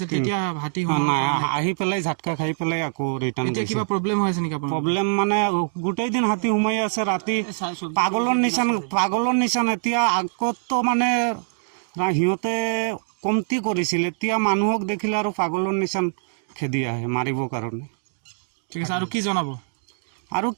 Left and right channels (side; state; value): left; silent; digital silence